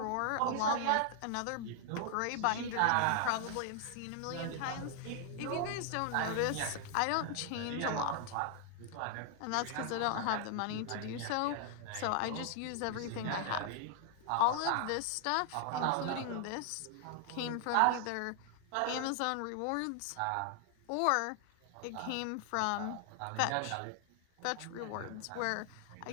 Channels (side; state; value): both; different; correlation 0.00